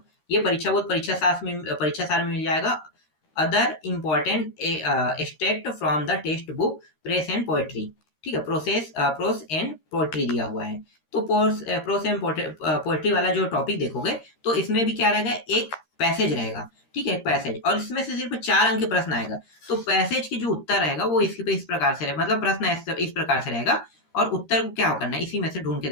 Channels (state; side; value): late; right; 13 ms